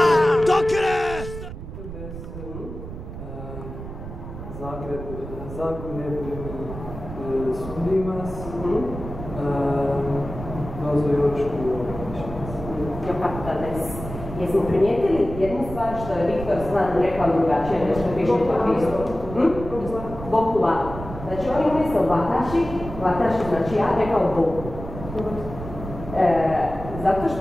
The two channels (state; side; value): noise; right; rumble, 10 dB below the sound